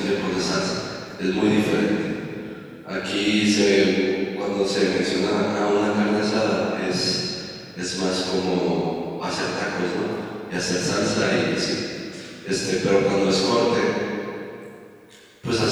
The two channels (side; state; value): both; identical; correlation 1.00